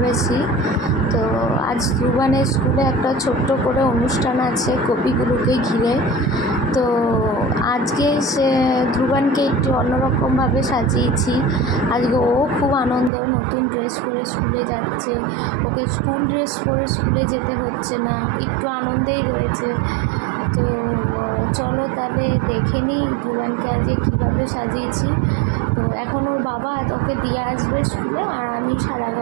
তো আজ ধ্রুবানের স্কুলে একটা ছোট্ট করে অনুষ্ঠান আছে কবিগুরুকে ঘিরে। তো আজকে ধ্রুবানকে একটু অন্যরকমভাবে সাজিয়েছি। আজকে ও খুব আনন্দ, নতুন ড্রেস পরে স্কুলে যাচ্ছে। ওকে স্কুল ড্রেস পরে স্কুলে যেতে হচ্ছে না, একটু আনন্দেই রয়েছে। তো চলো তাহলে দেখে নিই ধ্রুবানকে আজকে কীভাবে সাজিয়েছি। তো এখন ওর বাবা ওকে দিয়ে আসবে স্কুলে, আর আমি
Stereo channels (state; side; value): drops out; left; at 13.1 s